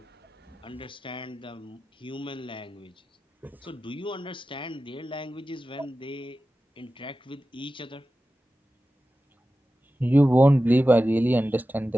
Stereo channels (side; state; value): both; normal; correlation 0.94